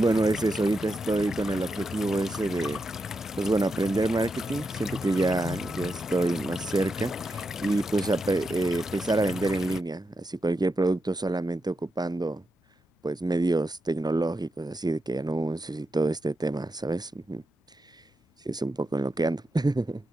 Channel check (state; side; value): normal; both; correlation 0.86